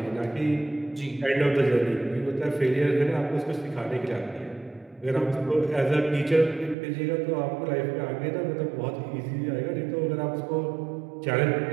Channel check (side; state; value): left; drops out; at 6.8 s